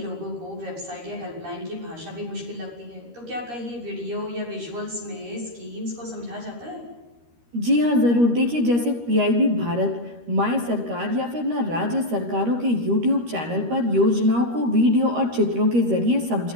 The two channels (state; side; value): late; left; 13 ms